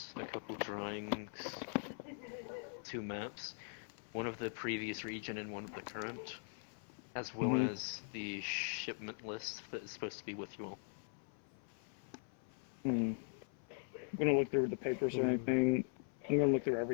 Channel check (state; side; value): silent; right; 50 dB below the other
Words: a couple drawings, 2 maps, one of the previous region and one of the current, as well as the shipment list that is supposed to be with you all. I'm gonna look through the papers or anything. I'm gonna look through